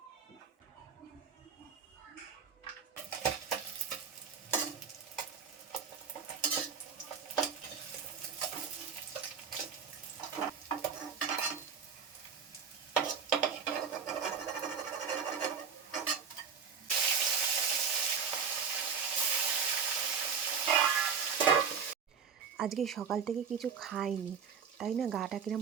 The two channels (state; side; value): quieter; left; 6.6 dB